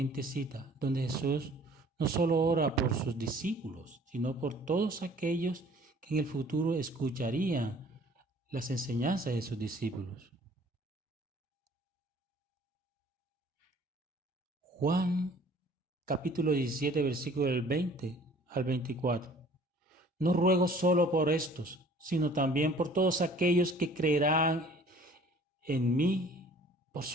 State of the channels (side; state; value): both; normal; correlation 0.52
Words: cita, donde Jesús no solo ora por sus discípulos, sino por todos aquellos que en el futuro escucharían las enseñanzas de sus discípulos. Juan capítulo 17, versículo del 20 al 24. No ruego solo por estos, sino también por todos aquellos que creerán en mí por